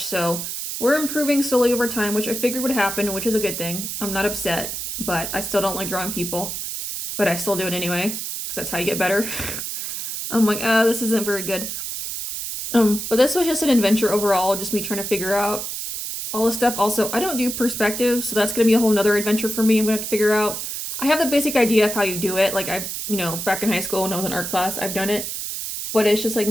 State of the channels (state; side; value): noise; right; hiss, 5 dB below the sound